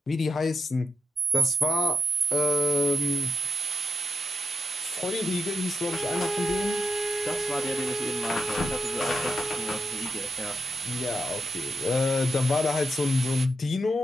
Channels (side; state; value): both; normal; correlation 0.85